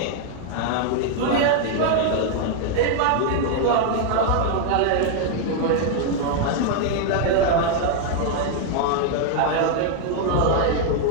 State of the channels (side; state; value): both; different; correlation 0.00